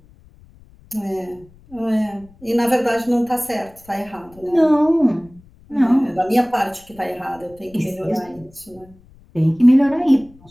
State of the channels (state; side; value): noise; left; rumble, 26 dB below the sound